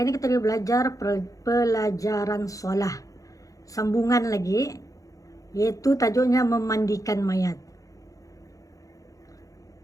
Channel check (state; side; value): late; right; 0.16 ms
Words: kita belajar pelajaran solah. Sambungan lagi, yaitu tajuknya memandikan mayat.